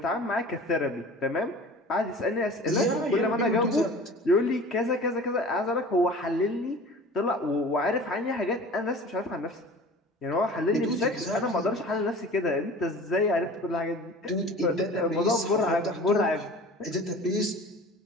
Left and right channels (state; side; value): normal; both; correlation 0.41